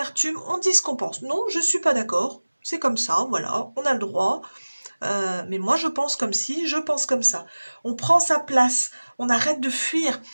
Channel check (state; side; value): inverted; both; correlation -1.00